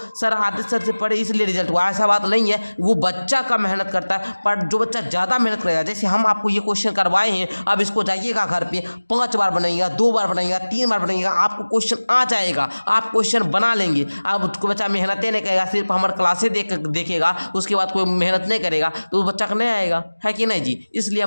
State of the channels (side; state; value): both; inverted; correlation -1.00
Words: सर आदित्य सर से पढ़े इसलिए रिजल्ट हुआ, ऐसा बात नहीं है, वो बच्चा का मेहनत करता है। पर जो बच्चा ज़्यादा मेहनत करेगा, जैसे हम आपको ये क्वेश्चन करवाए हैं, अब इसको जाइएगा घर पे 5 बार बनाइएगा, 2 बार बनाइएगा, 3 बार बनाइएगा, आपको क्वेश्चन आ जाएगा, आप क्वेश्चन बना लेंगे। अब कोई बच्चा मेहनत नहीं करेगा, सिर्फ हमारे क्लासे देखेगा, उसके बाद कोई मेहनत नहीं करेगा तो उस बच्चा का नहीं आएगा, है कि नहीं जी। इसलिए